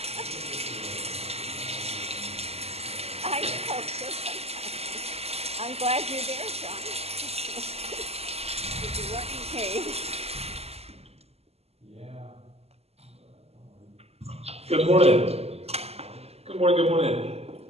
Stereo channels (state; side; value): late; left; 0.29 ms